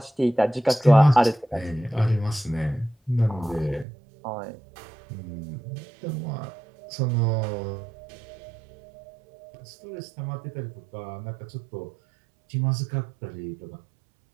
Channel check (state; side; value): drops out; left; at 3.9 s